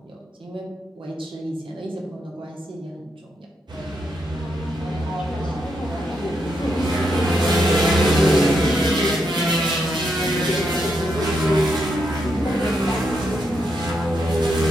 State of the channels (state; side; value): normal; both; correlation 0.81